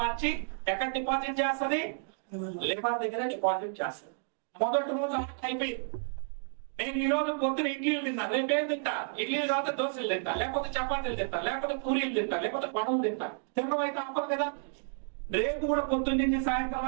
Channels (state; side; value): silent; left; digital silence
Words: మార్చి ఎక్కడ డిపాజిట్ చేస్తుంది? లివర్ దగ్గర డిపాజిట్ చేస్తుంది. మొదటి రోజు అయిపోయింది. నేను ఈ రోజు పొద్దున ఇడ్లీలు తిన్నా, రేపు ఏం తింటా? ఇడ్లీలు తర్వాత దోశలు తింటా, లేకపోతే చపాతీలు తింటా, లేకపోతే పూరీలు తింటా, లేకపోతే పనులు తింటా. తినడం అయితే అప్పదు కదా. రేపు కూడా పొద్దున్న నుంచి సాయంత్రం